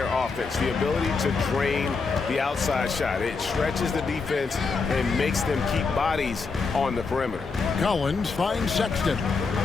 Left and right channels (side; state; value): right; quieter; 4.6 dB